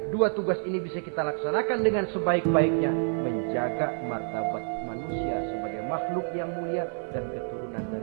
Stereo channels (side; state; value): left; silent; 57 dB below the other